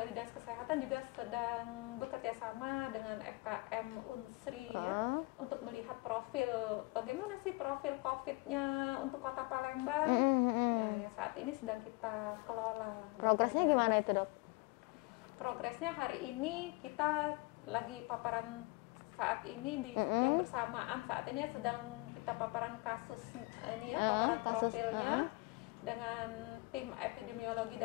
Dinas Kesehatan juga sedang bekerja sama dengan FKM Unsri ya, untuk melihat bagaimana sih profil COVID-nya untuk Kota Palembang ya, yang saat ini sedang kita kelola. Progresnya gimana itu, Dok? Progresnya hari ini kita lagi paparan saat ini yang bersamaan saat ini sedang kita paparan kasus ini ya, paparan profilnya dengan tim epidemiologi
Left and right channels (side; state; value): right; quieter; 26.2 dB